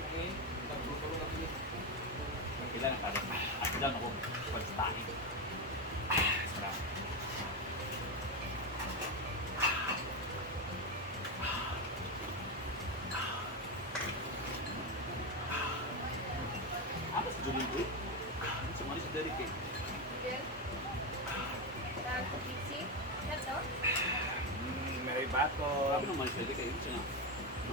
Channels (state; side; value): normal; both; correlation 0.11